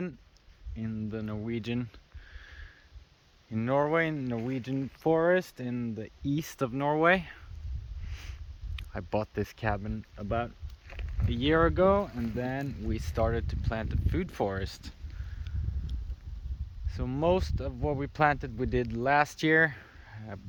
in the Norway, in Norwegian forest in the east of Norway. I bought this cabin about a year ago, and then we started to plant a food forest. So most of what we planted we did last year,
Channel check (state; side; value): identical; both; correlation 1.00